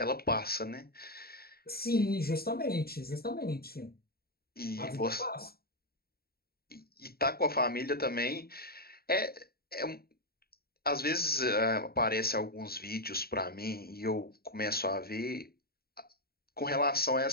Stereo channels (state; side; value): late; right; 0.45 ms